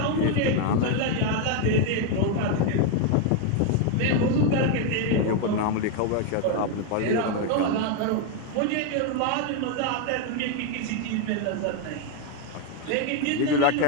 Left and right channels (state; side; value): different; both; correlation 0.01